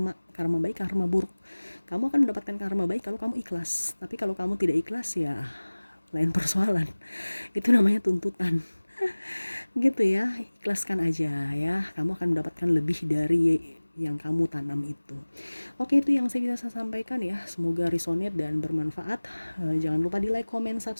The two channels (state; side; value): inverted; both; correlation -1.00